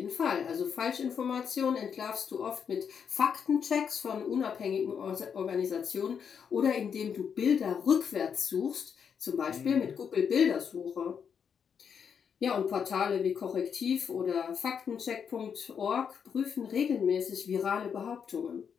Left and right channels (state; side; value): quieter; right; 7.1 dB